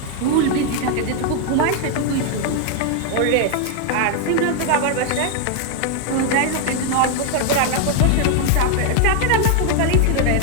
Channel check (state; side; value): different; both; correlation 0.00